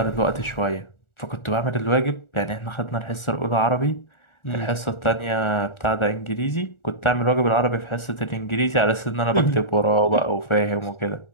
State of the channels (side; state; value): right; late; 1.4 ms